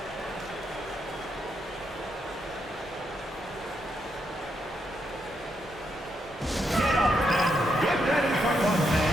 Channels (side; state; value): both; normal; correlation 0.80